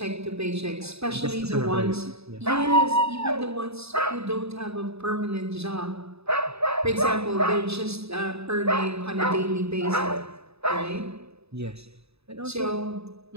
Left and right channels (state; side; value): late; left; 0.79 ms